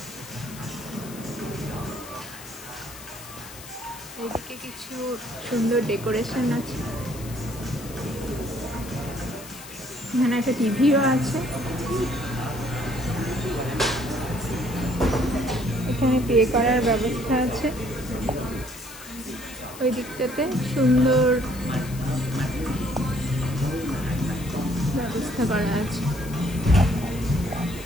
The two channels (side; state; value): left; noise; hiss, 15 dB below the sound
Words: এদিকে কিছু সুন্দর ডেকোরেশন আছে, এখানে একটা টিভিও আছে। এখানে পে করার ব্যবস্থা আছে, ওই দিকটাতে সুন্দর ব্যবস্থা করা আছে।